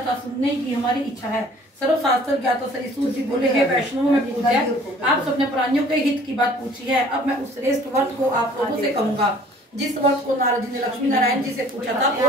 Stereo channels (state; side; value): normal; both; correlation 0.53